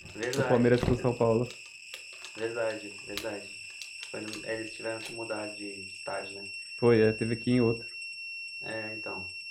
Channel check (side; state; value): both; identical; correlation 1.00